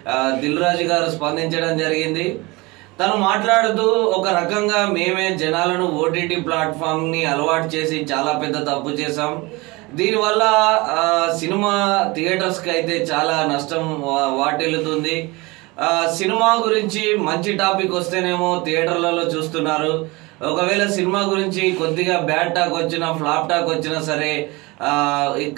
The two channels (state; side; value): quieter; left; 24.0 dB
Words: దిల్ రాజు గారు స్పందించడం జరిగింది. తను మాట్లాడుతూ ఒక రకంగా మేమే జనాలను ఓటీటీ ప్లాట్ఫామ్ ని అలవాటు చేసి చాలా పెద్ద తప్పు చేశాం. దీనివల్ల సినిమా థియేటర్స్ కి అయితే చాలా నష్టం వాటిల్లుతుంది. సినిమా గురించి మంచి టాపిక్ వస్తేనేమో థియేటర్లలో చూస్తున్నారు. ఒకవేళ సినిమా గురించి కొద్దిగా బ్యాడ్ టాక్ వచ్చినా ఫ్లాప్ టాక్ వచ్చినా సరే